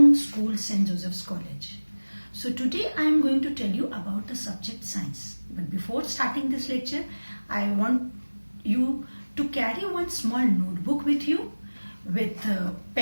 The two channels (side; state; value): both; inverted; correlation -1.00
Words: school, St. Joseph's College. So today I am going to tell you about the subject science. But before starting this lecture, I want you to carry one small notebook with you with